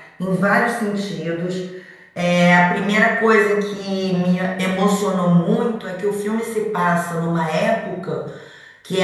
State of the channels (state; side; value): identical; both; correlation 1.00